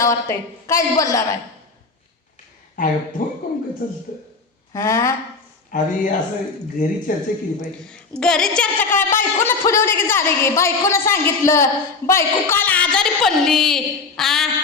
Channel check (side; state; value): right; quieter; 4.4 dB